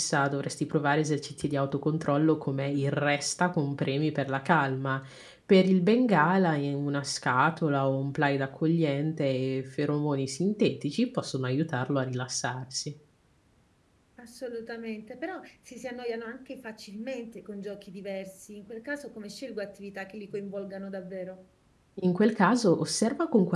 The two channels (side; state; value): both; identical; correlation 1.00